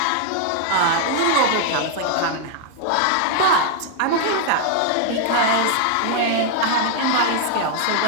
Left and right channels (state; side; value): different; both; correlation 0.00